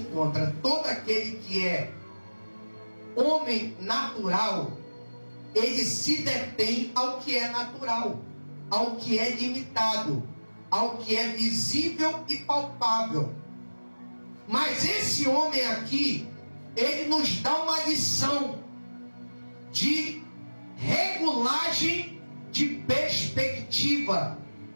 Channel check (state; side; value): inverted; both; correlation -1.00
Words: Todo aquele que é homem natural, ele se detém ao que é natural, ao que é limitado, ao que é visível e palpável. Mas esse homem aqui, ele nos dá uma lição de regulagem de perspectiva.